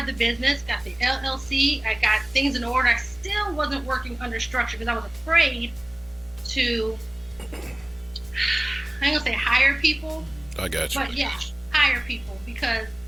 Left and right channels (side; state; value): right; noise; hum, 23 dB below the sound